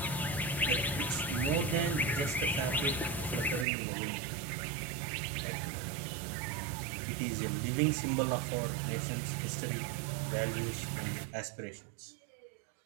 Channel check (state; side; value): drops out; left; at 3.7 s